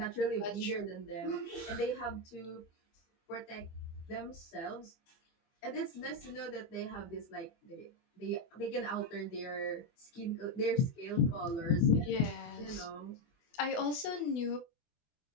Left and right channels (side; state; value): right; late; 24 ms